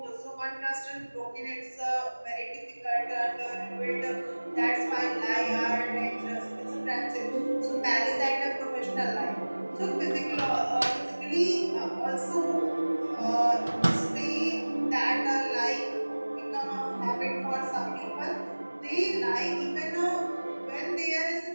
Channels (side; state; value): both; inverted; correlation -1.00